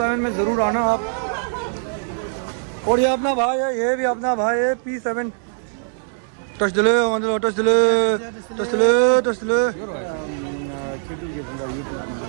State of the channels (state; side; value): silent; left; digital silence